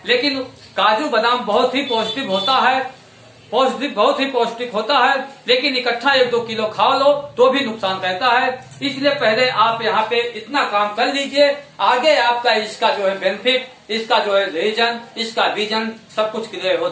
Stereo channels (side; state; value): both; identical; correlation 1.00